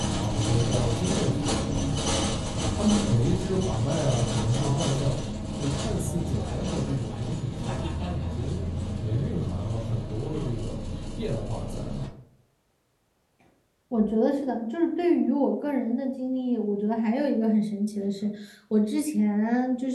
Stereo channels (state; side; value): identical; both; correlation 1.00